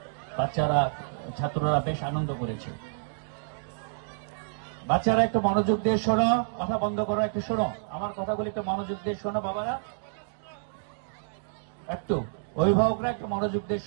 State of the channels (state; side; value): silent; left; digital silence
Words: ছাত্ররা বেশ আনন্দ করেছে। বাচ্চারা একটু মনোযোগ দিয়ে শোনো, কথা বন্ধ করো, একটু শোনো আমার কথাগুলি, একটু মনোযোগ দিয়ে শোনো বাবারা, একটু অভিভাবকরা একটু মনোযোগ দিয়ে